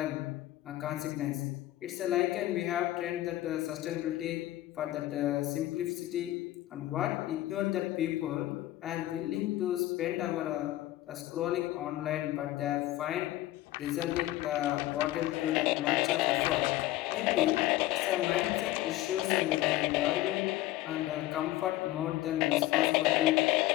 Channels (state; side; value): quieter; right; 15.8 dB